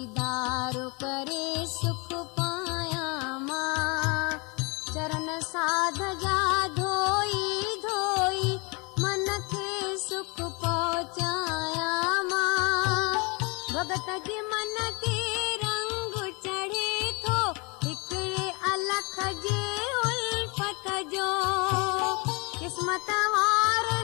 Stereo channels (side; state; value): right; quieter; 29.8 dB